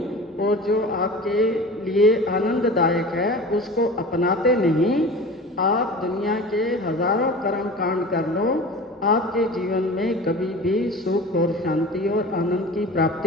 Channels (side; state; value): both; normal; correlation 0.36